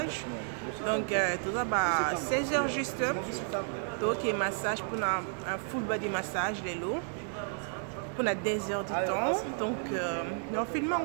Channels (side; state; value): left; silent; 56 dB below the other